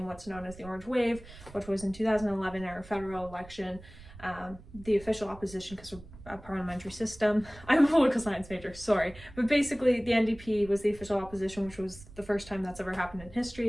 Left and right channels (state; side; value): noise; right; rumble, 18 dB below the sound